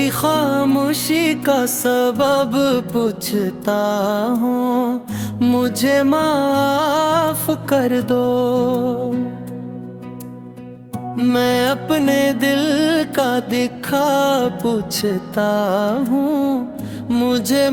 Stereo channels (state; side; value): identical; both; correlation 1.00